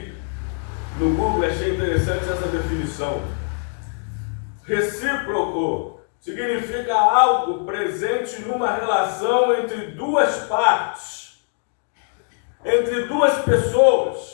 no Google e achei interessante essa definição. Recíproco significa algo presente numa relação entre duas partes, entre duas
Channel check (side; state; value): right; silent; 64 dB below the other